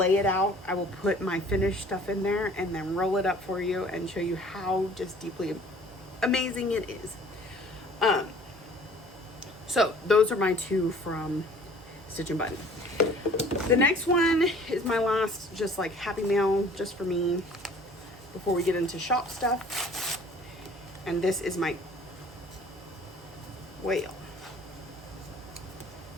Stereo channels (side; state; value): both; normal; correlation 0.51